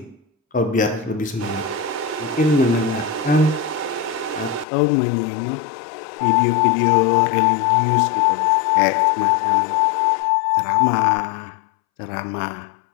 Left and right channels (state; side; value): drops out; right; at 4.7 s